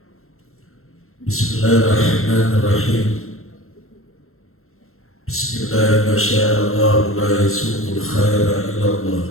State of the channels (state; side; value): late; right; 0.62 ms